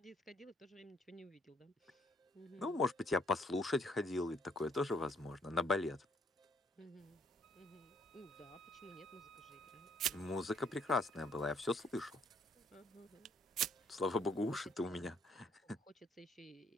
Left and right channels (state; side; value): normal; both; correlation 0.67